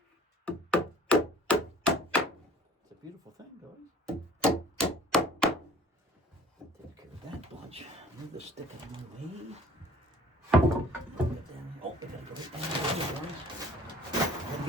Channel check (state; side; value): normal; both; correlation 0.51